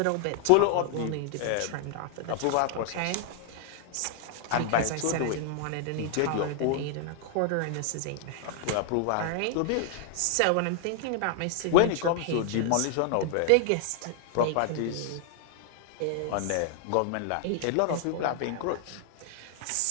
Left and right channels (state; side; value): different; both; correlation 0.00